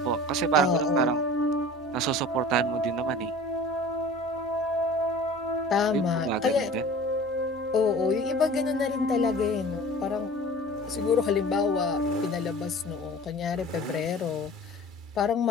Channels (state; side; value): normal; both; correlation 0.42